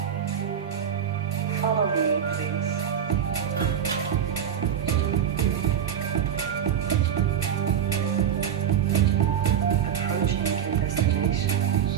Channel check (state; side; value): quieter; left; 9.0 dB